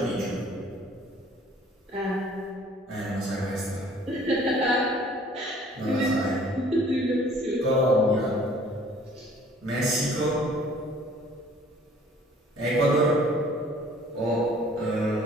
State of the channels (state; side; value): normal; both; correlation 0.54